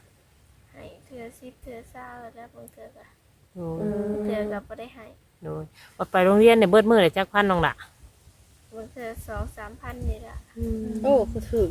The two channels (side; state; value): both; identical; correlation 1.00